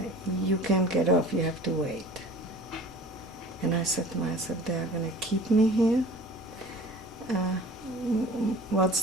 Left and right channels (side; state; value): both; normal; correlation 0.44